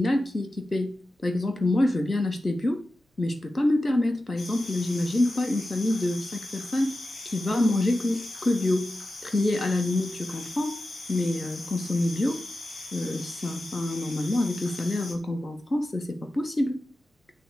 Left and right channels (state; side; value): normal; both; correlation 0.93